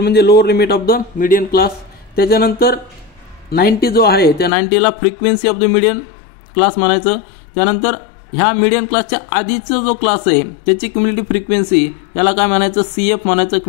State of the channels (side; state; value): right; drops out; at 4.5 s